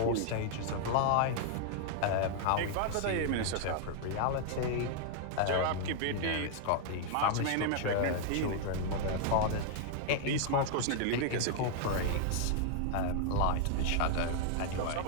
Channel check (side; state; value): both; different; correlation 0.00